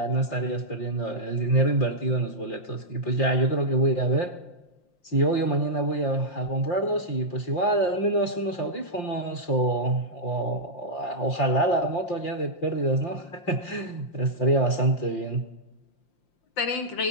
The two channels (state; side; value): late; right; 5.7 ms